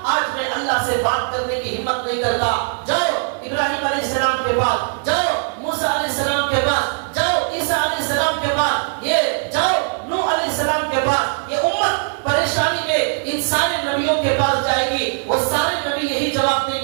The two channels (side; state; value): left; silent; 60 dB below the other